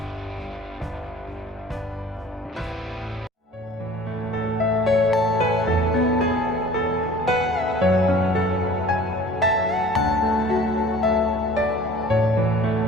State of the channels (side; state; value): both; normal; correlation 0.48